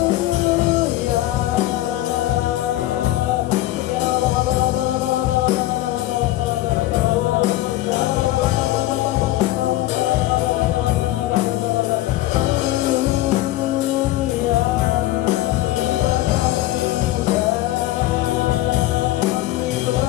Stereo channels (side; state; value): right; quieter; 16.0 dB